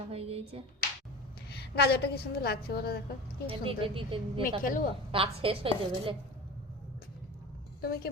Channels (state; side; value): normal; both; correlation 0.33